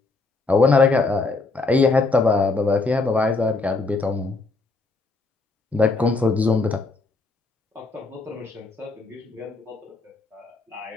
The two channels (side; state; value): right; quieter; 3.6 dB